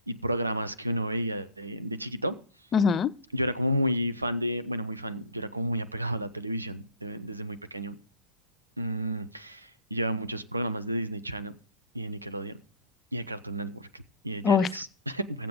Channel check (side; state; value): both; inverted; correlation -0.33